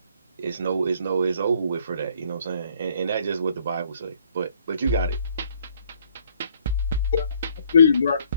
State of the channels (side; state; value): both; inverted; correlation -0.64